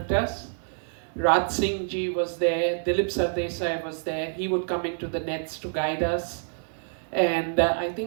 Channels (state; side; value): silent; left; digital silence